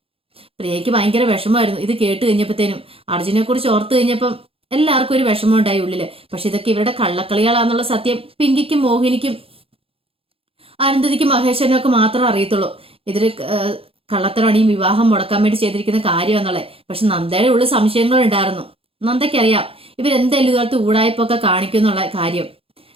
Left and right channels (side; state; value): left; late; 0.27 ms